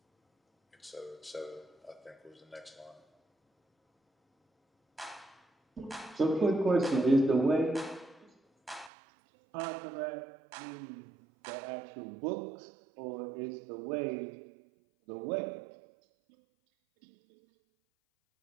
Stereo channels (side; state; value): left; drops out; at 8.9 s